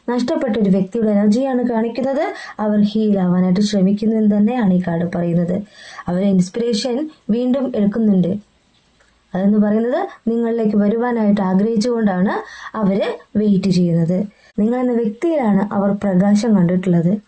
നഷ്ടപ്പെട്ട ഒരു വ്യക്തിയുടെ എനർജിയാണ് കാണിക്കുന്നത്. അവർ ഹീൽ ആവാനായിട്ട് ശ്രമിക്കുന്നു എന്ന് തന്നെയാണ് ഈ കാർഡ് പറയുന്നത്. അവരെ ഇൻസ്പിറേഷൻ വീണ്ടും എടുക്കുന്നുണ്ട്. അതെന്ന് പറയുന്നത് നിങ്ങളിലേക്ക് വരുവാനായിട്ട് ആഗ്രഹിച്ചുകൊണ്ടാണ് അവര് വെയിറ്റ് ചെയ്യുന്നത്. നിങ്ങളെന്ന വ്യക്തിയിലാണ് അവർ പ്രകാശം കണ്ടിട്ടുള്ളത്.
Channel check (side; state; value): both; identical; correlation 1.00